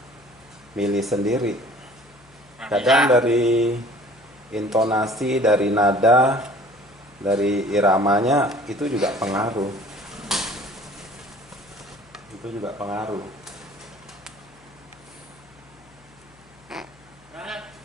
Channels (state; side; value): noise; left; hum, 28 dB below the sound